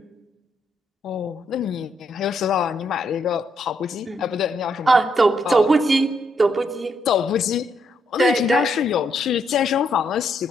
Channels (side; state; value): both; normal; correlation 0.76